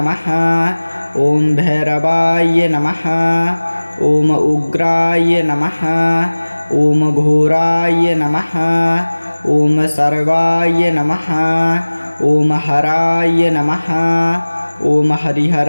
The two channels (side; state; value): both; inverted; correlation -1.00